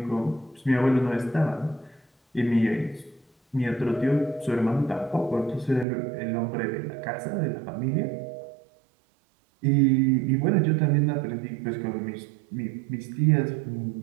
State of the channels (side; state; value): left; drops out; at 5.9 s